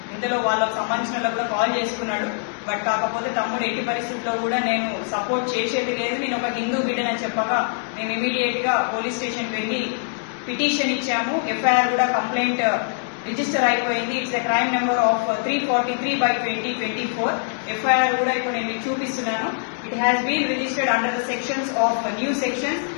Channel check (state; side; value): silent; right; digital silence